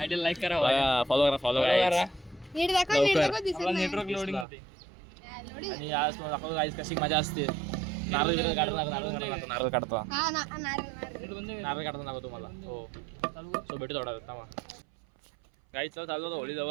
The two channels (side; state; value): left; drops out; at 4.5 s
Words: आयडीला लाईक करा फॉलो करा नीट दाखव नीट दाखव दिसत नाही नेटवर्क लोडिंग होते लोडी आणि आज तुम्हाला दाखवतो गाईस कशी मजा असते नारळ काढतो हा नारळ नारळ नारळ काढतो दाखवतो तुम्हाला हो सो भेटू थोडा थांबा गाईच चालू होतं होळी